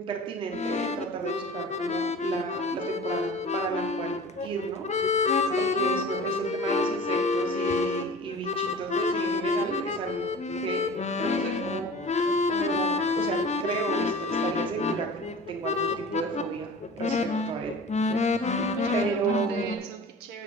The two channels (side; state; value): both; normal; correlation 0.40